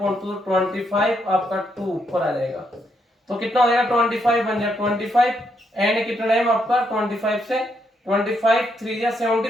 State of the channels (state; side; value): normal; both; correlation 0.77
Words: 25 आपका 2 ऊपर आ जाएगा, तो कितना हो जाएगा 25 बन जाएगा 25, एंड कितना टाइम आपका 25 से 25 3 या